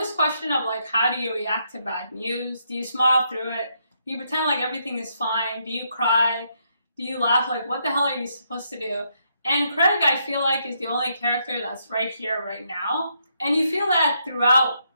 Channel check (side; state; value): both; inverted; correlation -0.76